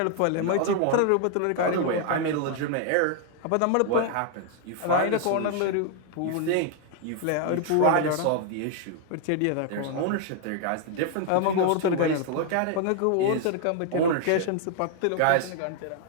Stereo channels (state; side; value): different; both; correlation 0.00